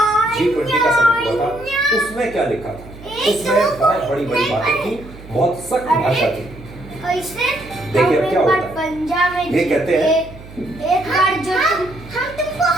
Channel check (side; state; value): right; noise; hum, 18 dB below the sound